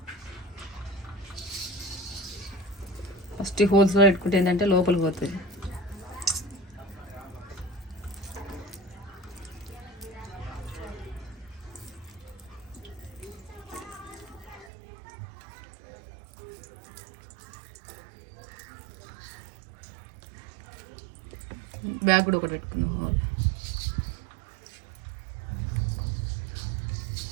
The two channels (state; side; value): drops out; left; at 14.7 s